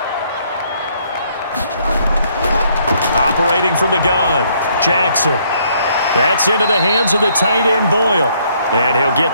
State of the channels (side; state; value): both; inverted; correlation -0.67